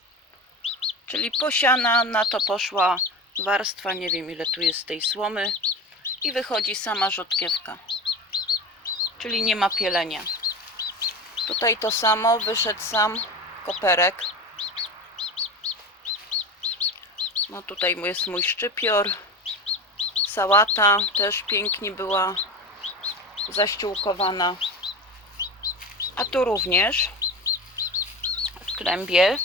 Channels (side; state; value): both; normal; correlation 0.28